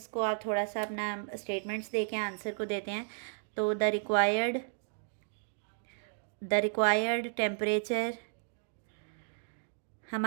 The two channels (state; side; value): silent; left; digital silence